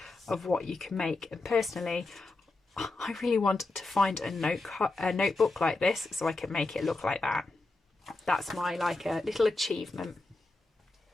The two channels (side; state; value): right; quieter; 3.1 dB